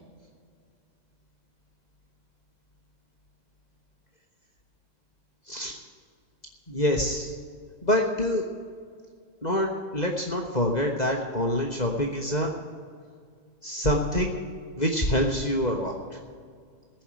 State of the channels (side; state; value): right; late; 2.0 ms